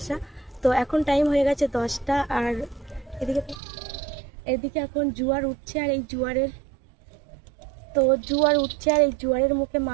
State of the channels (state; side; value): drops out; left; at 3.6 s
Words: তো এখন টাইম হয়ে গেছে 10টা, আর এদিকে এখন জোয়ার উঠছে, আর এই জোয়ারের মুখে